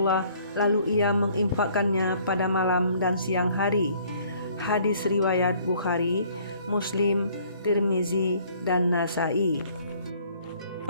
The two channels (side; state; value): both; inverted; correlation -0.59